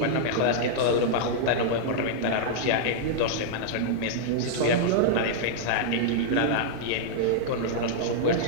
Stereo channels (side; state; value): both; different; correlation -0.02